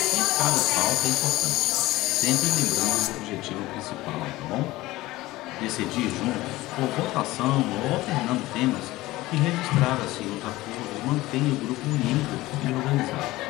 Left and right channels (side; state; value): right; quieter; 18.3 dB